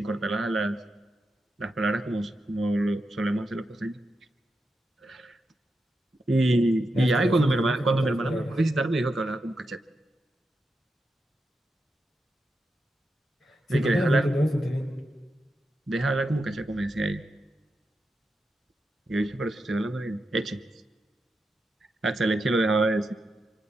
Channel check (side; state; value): both; normal; correlation 0.87